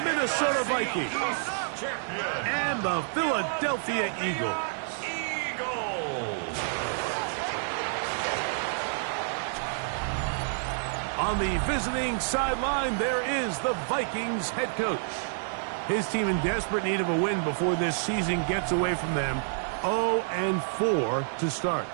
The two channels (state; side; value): silent; left; digital silence